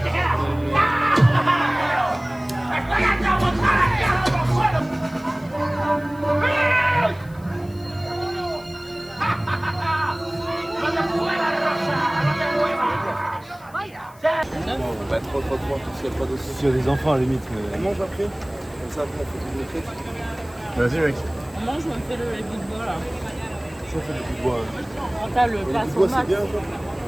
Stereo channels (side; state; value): left; noise; hiss, 26 dB below the sound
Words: S'il y a des enfants à la limite, mais. On mange après. Comme ça, après, on fait tout le truc. Vas-y, mec. On mange, on fait le bout de bois là. Si on fait du bout de bois. Quand t'as le passe au Bois, max. c'est bien, quoi.